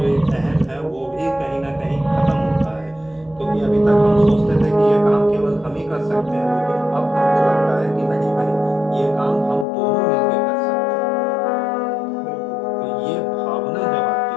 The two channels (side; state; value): right; drops out; at 9.7 s